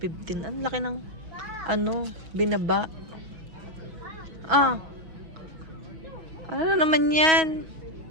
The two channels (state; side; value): late; left; 6.2 ms